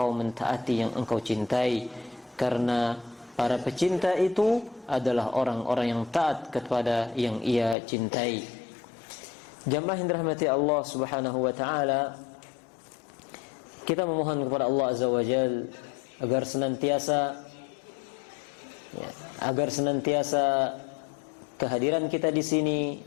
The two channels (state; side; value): drops out; right; at 7.8 s